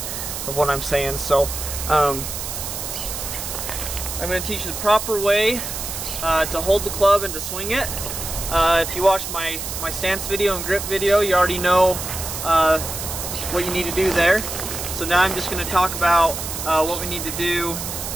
of what I'm saying. So I'm going to teach you the proper way to hold the club and to swing it. If you watched my stance video and grip video, you already know what you need to do there. So now I'm just going to talk about what we need to do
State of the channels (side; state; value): right; noise; hiss, 6 dB below the sound